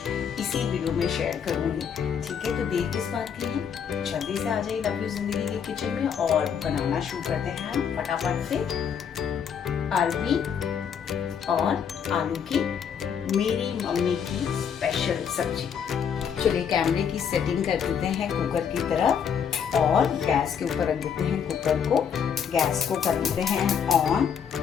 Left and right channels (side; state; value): right; quieter; 7.5 dB